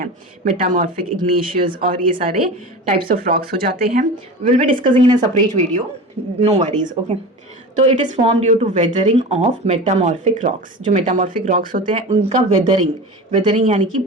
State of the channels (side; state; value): both; normal; correlation 0.31